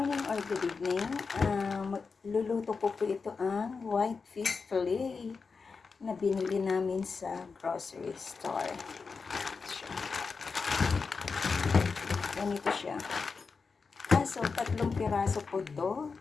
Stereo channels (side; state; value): right; quieter; 4.9 dB